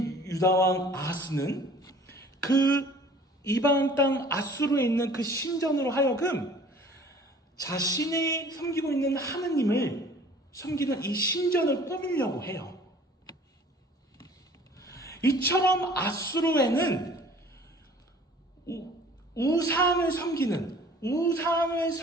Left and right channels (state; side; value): normal; both; correlation 0.49